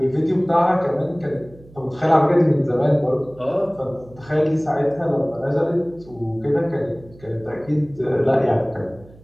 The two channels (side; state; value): right; noise; hum, 23 dB below the sound